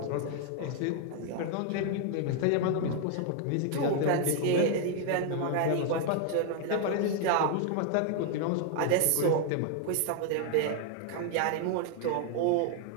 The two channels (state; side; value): different; both; correlation 0.00